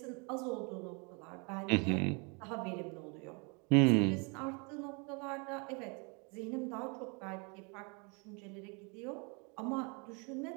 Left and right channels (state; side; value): quieter; left; 32.7 dB